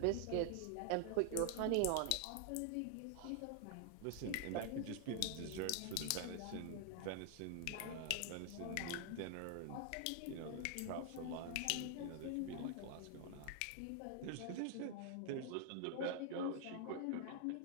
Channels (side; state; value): both; different; correlation 0.00